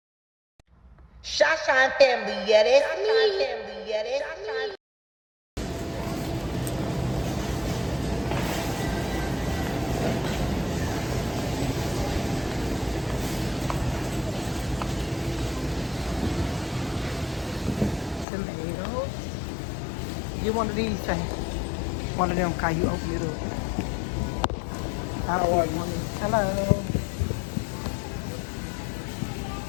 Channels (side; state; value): right; drops out; at 18.2 s